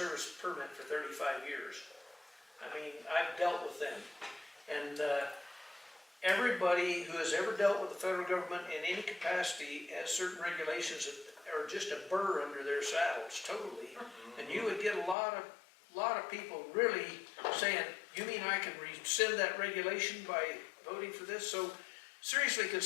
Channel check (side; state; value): right; drops out; at 15.2 s